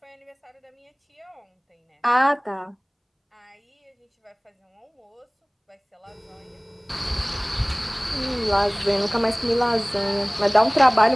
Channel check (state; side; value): identical; both; correlation 1.00